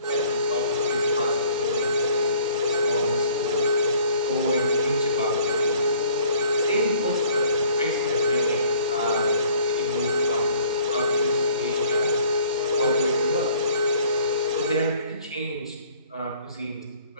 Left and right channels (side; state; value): both; inverted; correlation -0.56